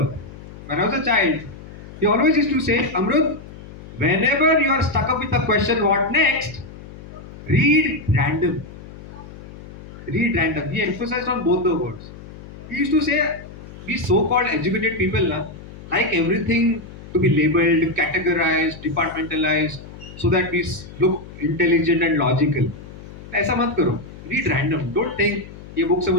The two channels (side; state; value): left; noise; hum, 15 dB below the sound